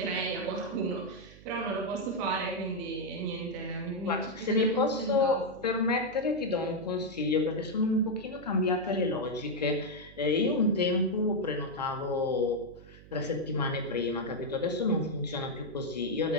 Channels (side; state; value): right; noise; hum, 20 dB below the sound